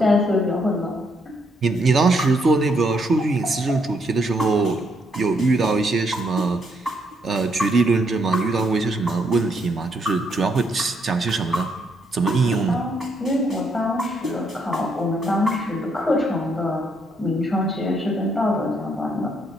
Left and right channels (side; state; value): both; normal; correlation 0.74